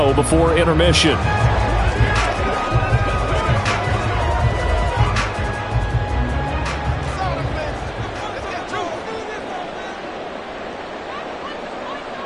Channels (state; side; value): identical; both; correlation 1.00